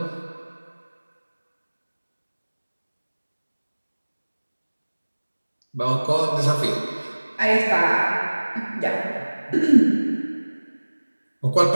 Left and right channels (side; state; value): both; inverted; correlation -1.00